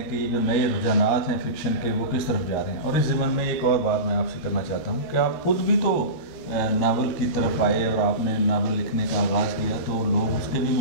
کہ یہ جو نئے رجحانات ہیں فکشن کے وہ کس طرف جا رہے ہیں؟ اور اس ضمن میں ایک اور بات میں آپ سے کرنا چاہتا ہوں کہ آپ خود بھی تو ناول کی طرف آئے اور آپ نے ناول لکھنے کا آغاز کیا، تو لوگ اس کے بھی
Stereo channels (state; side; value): late; right; 13 ms